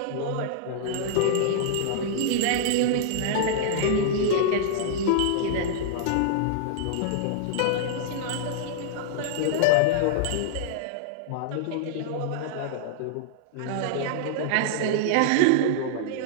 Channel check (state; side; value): different; both; correlation -0.01